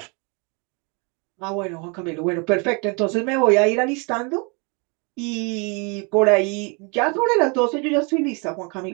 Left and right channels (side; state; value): left; quieter; 32.7 dB